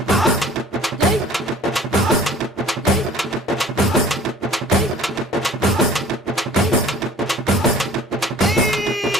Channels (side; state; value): both; normal; correlation 0.49